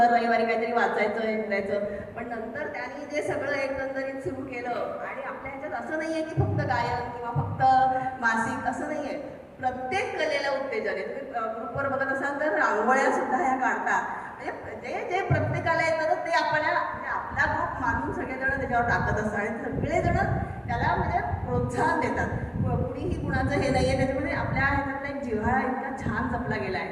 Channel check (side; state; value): both; identical; correlation 1.00